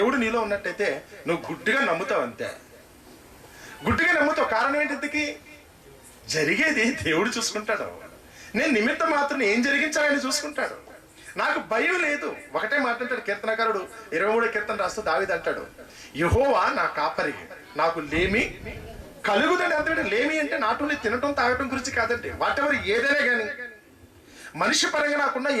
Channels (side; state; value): both; identical; correlation 1.00